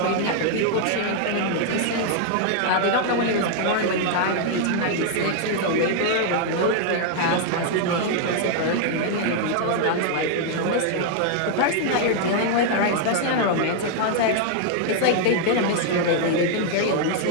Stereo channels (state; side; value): different; both; correlation 0.00